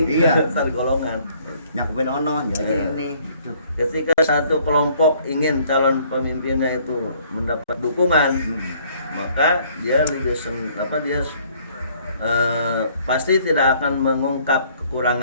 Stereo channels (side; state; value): both; inverted; correlation -0.61